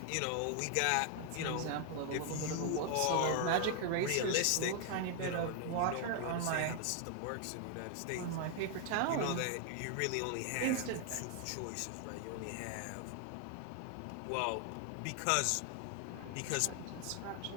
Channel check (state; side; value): different; both; correlation 0.00